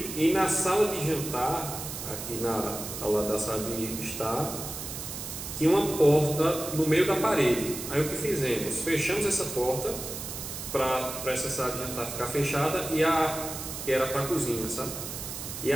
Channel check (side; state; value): right; noise; hiss, 8 dB below the sound